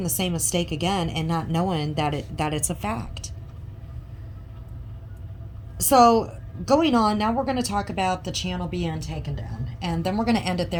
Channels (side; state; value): both; identical; correlation 1.00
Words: the same mistake again and not knowing that it's a fact. So going on now, we're going to talk about the channel being taken down, and then we're going to end it